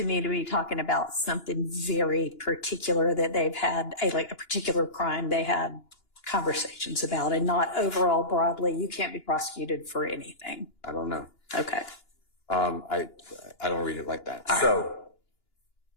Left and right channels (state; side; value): late; right; 2.9 ms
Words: me to be talking about something very particular that they've had, like a particular crime they had conversations about, and not overall broadly. You can't be prosecuted for anything. I don't know. Okay. I don't read it like that. All so